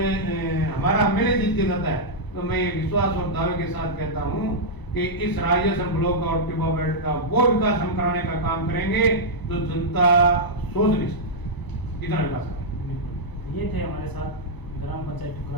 हमारा एमएलए जीत के जाता है, तो मैं ये विश्वास और दावे के साथ कहता हूँ कि इस राजेश्वर ब्लॉक और टिब्बा बेल्ट का वो विकास हम कराने का काम करेंगे जो जनता सोच नहीं सकती, इतना विकास करेंगे। ये थे हमारे साथ ग्राम पंचायत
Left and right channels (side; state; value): right; late; 1.0 ms